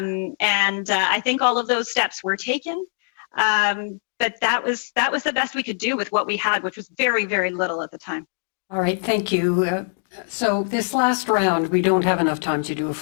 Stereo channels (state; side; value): silent; right; digital silence